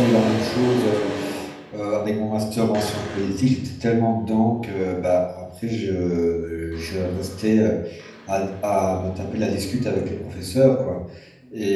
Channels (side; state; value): both; identical; correlation 1.00